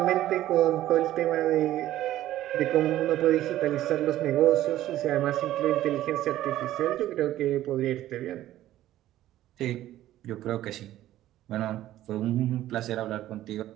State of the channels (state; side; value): quieter; left; 13.9 dB